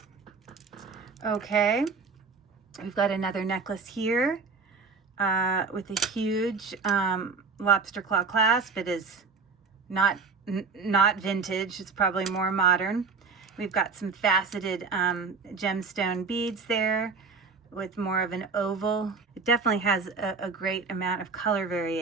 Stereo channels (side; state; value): left; quieter; 4.6 dB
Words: Okay, we've got another necklace here with a huge lobster claw clasp. It is not vintage, it's probably more modern. We've got some faceted gemstone beads there with more of an oval. It definitely has a great amount of color